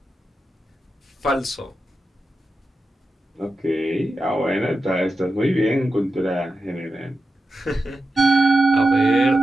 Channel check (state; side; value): normal; both; correlation 0.91